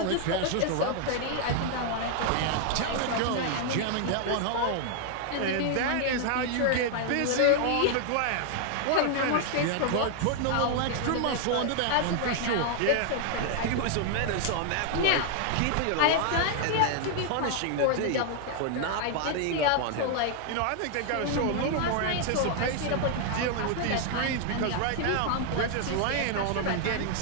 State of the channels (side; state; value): both; different; correlation 0.00